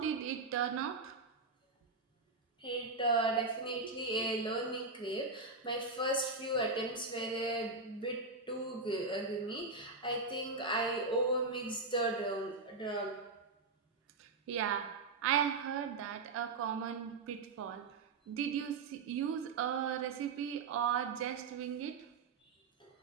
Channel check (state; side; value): quieter; left; 4.0 dB